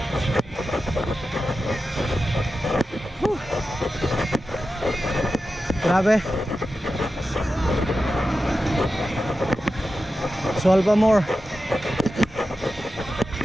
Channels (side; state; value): both; normal; correlation 0.92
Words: Grabe. Swal pa more.